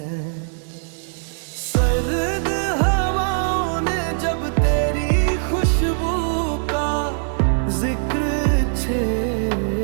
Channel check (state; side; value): silent; left; digital silence